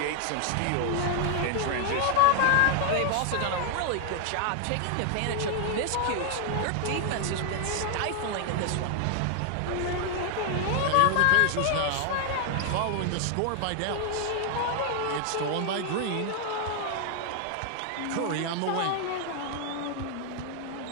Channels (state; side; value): different; both; correlation 0.00